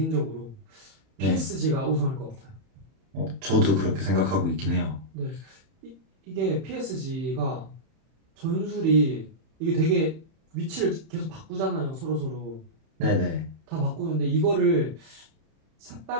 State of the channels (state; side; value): late; left; 31 ms